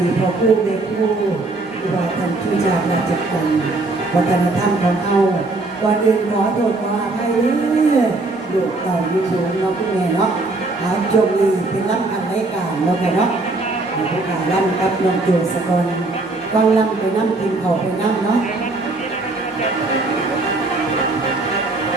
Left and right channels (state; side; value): quieter; left; 3.1 dB